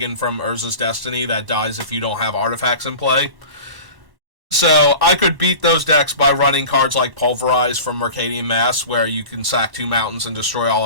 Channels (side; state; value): left; late; 1.1 ms